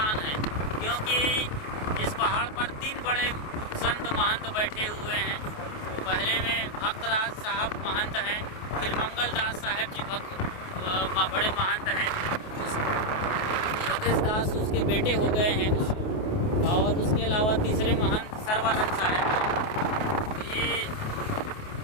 है, क्योंकि इस पहाड़ पर 3 बड़े संत महंत बैठे हुए हैं। पहले में भक्तराज साहब महंत हैं, फिर मंगलदास साहब जी बड़े महंत हैं, योगेश दास उसके बेटे हो गए हैं और उसके अलावा तीसरे महंत सर्वानंद साहब हैं। तो ये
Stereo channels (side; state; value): right; late; 28 ms